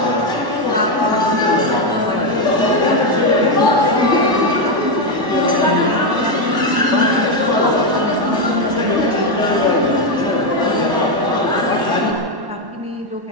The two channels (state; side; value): late; left; 1.1 ms